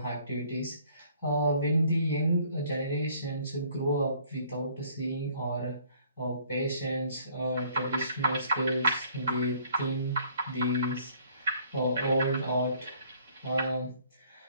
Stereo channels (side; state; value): both; inverted; correlation -0.59